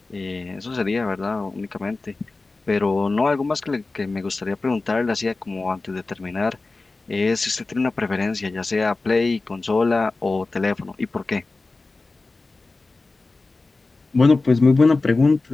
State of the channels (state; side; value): quieter; right; 3.5 dB